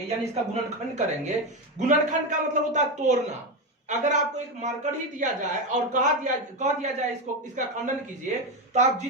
यानी इसका गुणनखंड करेंगे। गुणनखंड का मतलब होता है तोड़ना। अगर आपको एक मार्कर ही दिया जाए और कह दिया जाए इसको, इसका खंडन कीजिए, तो आप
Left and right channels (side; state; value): both; normal; correlation 0.13